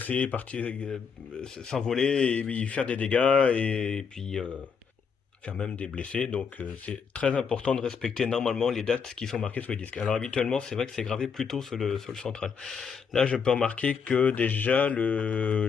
partir, s'envoler et faire des dégâts et puis faire même des blessés. Donc c'est très important de respecter normalement les dates qui sont marquées sur les disques. Alors habituellement, c'est vrai que c'est gravé plutôt sur le central. Là, je peux remarquer que déjà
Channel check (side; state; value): right; quieter; 6.2 dB